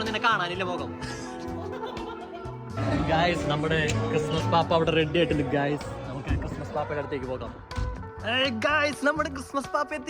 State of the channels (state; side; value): identical; both; correlation 1.00